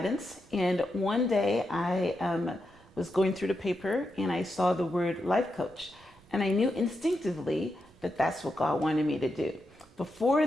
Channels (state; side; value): noise; right; rumble, 29 dB below the sound